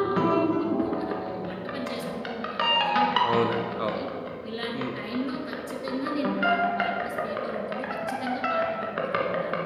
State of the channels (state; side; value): identical; both; correlation 1.00